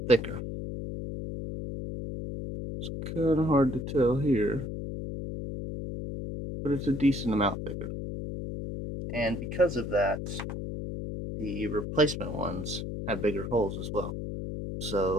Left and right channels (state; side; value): noise; left; hum, 5 dB below the sound